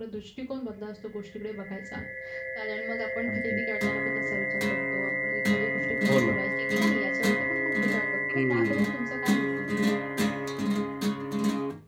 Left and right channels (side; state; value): both; identical; correlation 1.00